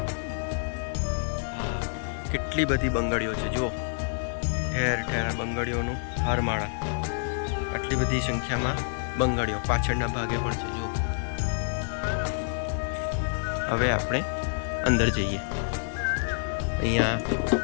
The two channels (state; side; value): silent; right; 59 dB below the other